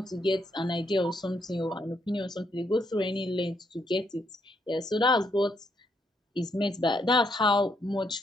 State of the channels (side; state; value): both; normal; correlation 0.75